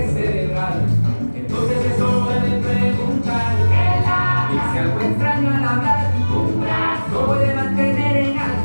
cerebral, entonces es hora de preguntar. Dice algo extraño al hablar. No puede mantener en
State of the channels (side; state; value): both; inverted; correlation -1.00